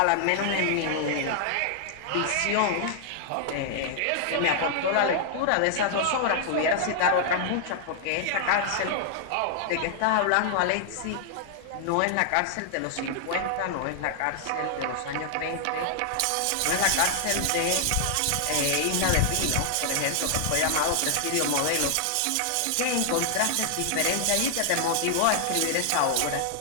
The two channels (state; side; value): different; both; correlation 0.00